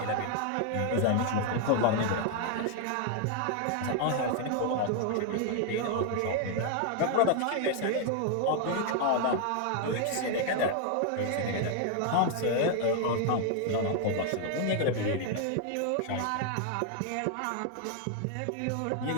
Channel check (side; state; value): both; different; correlation 0.00